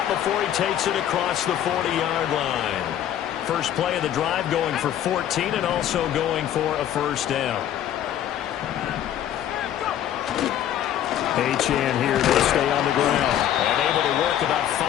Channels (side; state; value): right; quieter; 10.9 dB